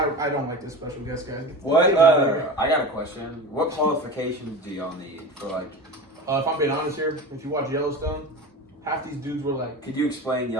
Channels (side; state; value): both; normal; correlation 0.29